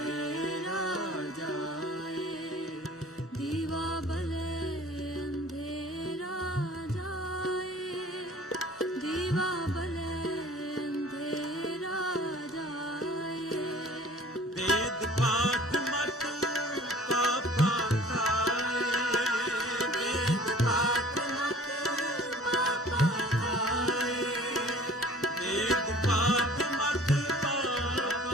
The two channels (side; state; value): both; normal; correlation 0.48